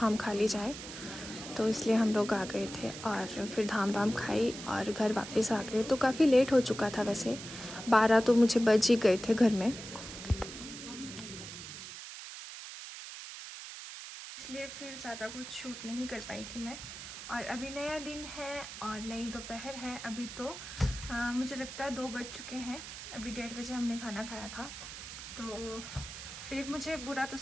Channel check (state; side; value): noise; right; hiss, 11 dB below the sound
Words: खा ली जाए, तो इसलिए हम लोग आ गए थे और फिर धाम वाम खाई और घर वापस आ गए। तो काफ़ी लेट हो चुका था, वैसे 12 तो मुझे बज ही गए थे घर में, इसलिए फिर ज़्यादा कुछ शूट नहीं कर पाई थी मैं। और अभी नया दिन है और नई दोपहर है। अभी तो मुझे लगता है 2 बज चुके हैं, अभी 1:30 बजे हमने खाना खाया था। तो फिर मुझे बुरा तो